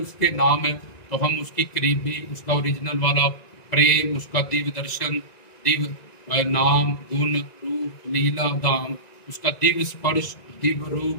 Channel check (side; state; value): right; late; 1.9 ms